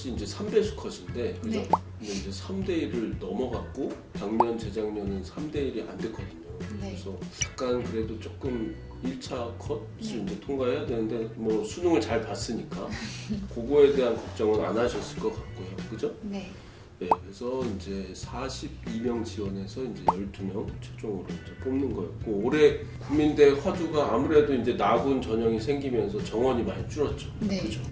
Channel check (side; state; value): both; identical; correlation 1.00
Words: 이제 3배수 컷인데 그죠? 네. 근데 이제 3대 1을 넘어갔고 작년 재작년은 3대 1이 안 됐거든요. 네. 그래서 약간 그래도 조금 1차 컷을 네. 이제 통과해야 되는데 뭐 수능을 잘 봤으니까 그거에 대한 걱정은 안 하셨을 것 같고요. 그죠? 네. 네, 그래서 이제 42명 지원해서 이제 12명 최종으로 이제 뽑는 거였고 올해 국민대 화두가 아무래도 이제 나군 전형이 생기면서 정원이 많이 줄었죠. 네. 그죠?